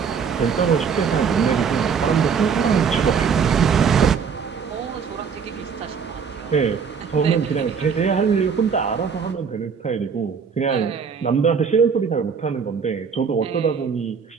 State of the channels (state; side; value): quieter; left; 6.3 dB